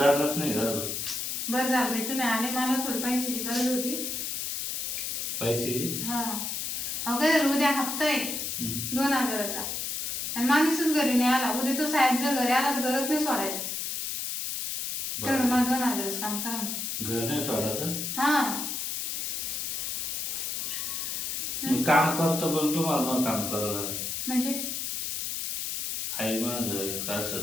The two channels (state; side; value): noise; left; hiss, 3 dB below the sound